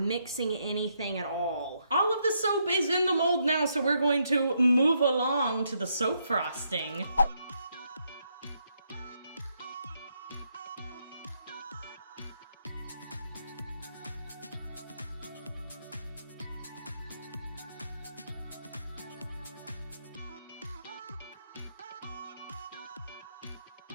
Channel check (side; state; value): both; inverted; correlation -0.77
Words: anything at all. All of the soap is in the mold now, so we're going to move along to the soap frosting.